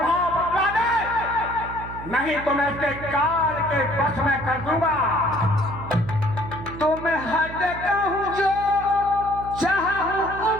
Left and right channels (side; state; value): right; noise; hum, 12 dB below the sound